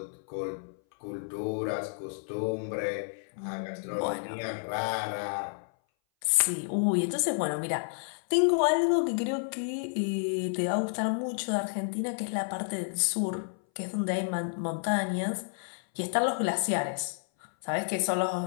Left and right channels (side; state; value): right; silent; 58 dB below the other